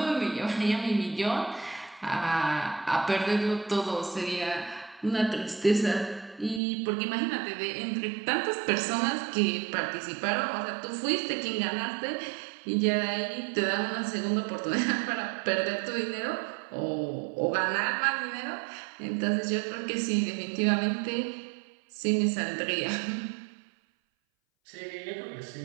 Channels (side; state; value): left; drops out; at 6.6 s